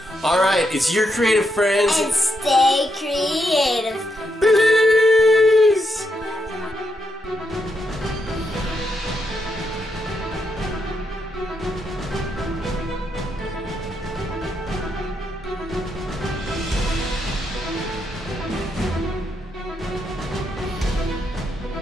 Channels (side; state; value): both; normal; correlation 0.81